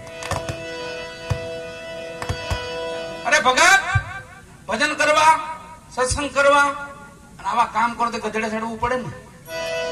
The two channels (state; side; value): identical; both; correlation 1.00